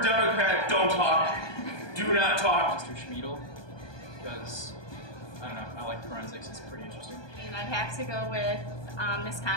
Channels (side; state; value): right; late; 1.2 ms